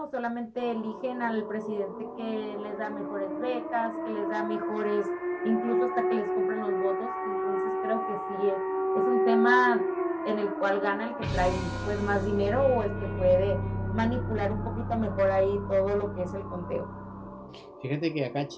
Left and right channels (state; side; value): identical; both; correlation 1.00